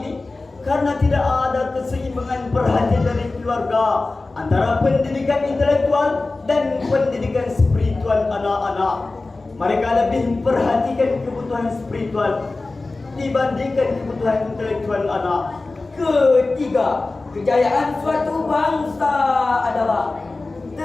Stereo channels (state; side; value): quieter; right; 3.4 dB